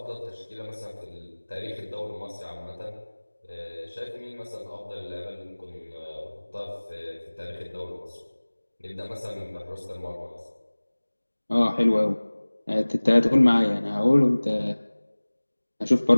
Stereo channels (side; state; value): both; inverted; correlation -1.00